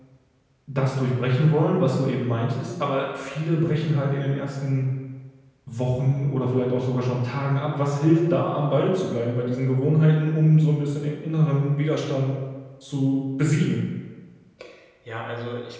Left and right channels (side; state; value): both; identical; correlation 1.00